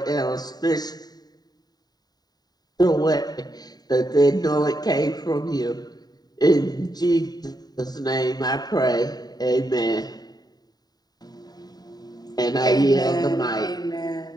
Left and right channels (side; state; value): right; late; 0.19 ms